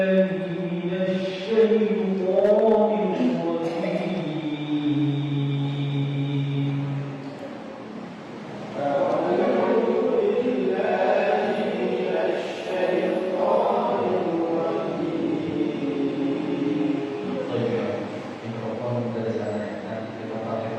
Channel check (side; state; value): both; identical; correlation 1.00